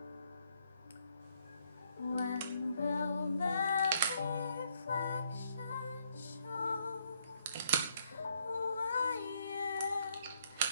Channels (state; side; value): inverted; both; correlation -0.71